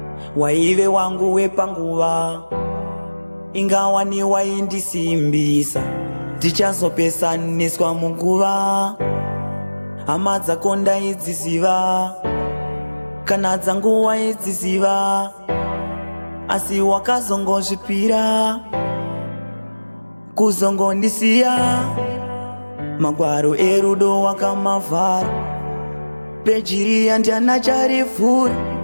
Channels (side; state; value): both; inverted; correlation -1.00